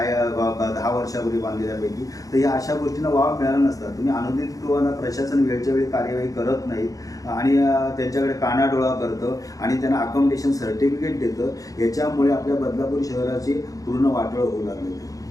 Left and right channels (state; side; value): late; right; 0.17 ms